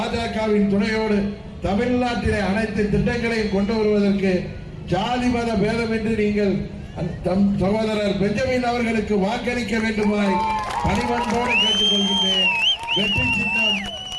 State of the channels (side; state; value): both; identical; correlation 1.00